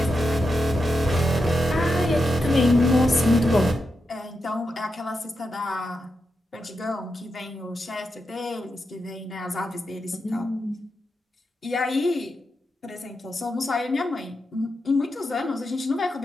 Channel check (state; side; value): normal; both; correlation 0.87